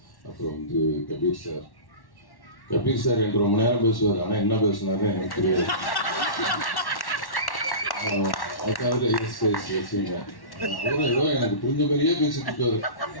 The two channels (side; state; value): right; late; 1.1 ms